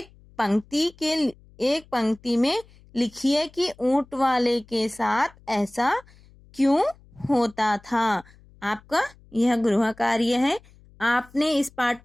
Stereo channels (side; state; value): left; noise; hum, 26 dB below the sound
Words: पंक्ति में लिखिए कि ऊंट वाले के साथ ऐसा क्यों होता था। आपका यह गृह कार्य है। आपने इस पाठ